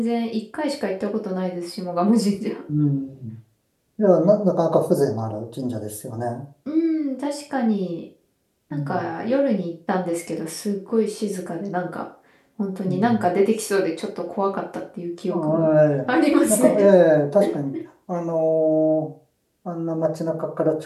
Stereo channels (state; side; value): identical; both; correlation 1.00